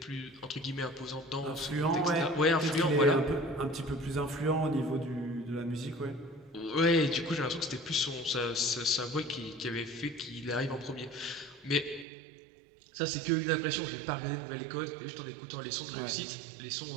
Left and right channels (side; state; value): left; drops out; at 12.1 s